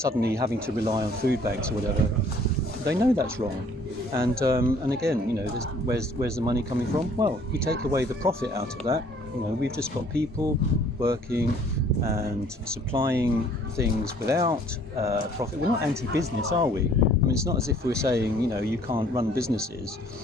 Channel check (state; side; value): normal; both; correlation 0.57